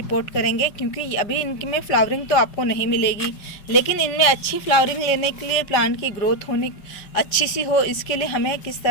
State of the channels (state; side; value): late; right; 5.1 ms